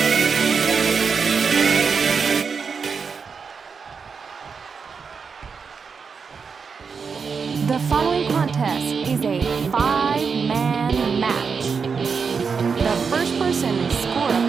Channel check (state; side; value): quieter; left; 5.6 dB